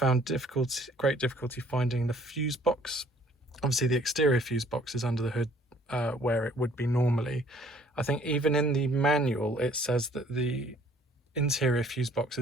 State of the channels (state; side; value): normal; both; correlation 0.58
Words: great difficulty finding the fuse box. Obviously the exterior fuse box is under the hood where it would be normally. I think even in the manual it says that the interior fuse box